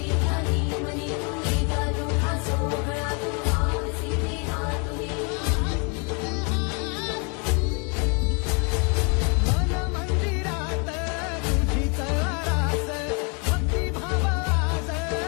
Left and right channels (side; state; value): right; quieter; 34.8 dB